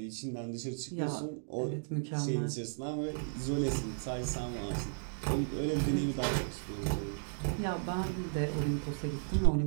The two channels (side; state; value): left; silent; digital silence